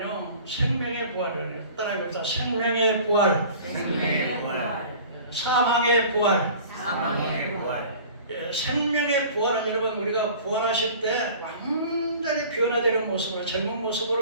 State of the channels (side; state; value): both; inverted; correlation -0.44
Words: 생명의 부활이에요. 따라해 봅시다. 생명의 부활, 사망의 부활. 생명의 부활은 여러분 우리가 부활하실 때 완전히 변화되는 모습으로 젊은